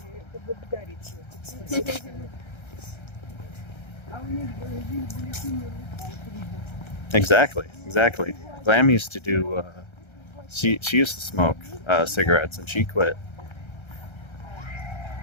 Exactly. Glam used to do, she used to smoke cigarettes and she quit.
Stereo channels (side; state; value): right; late; 1.3 ms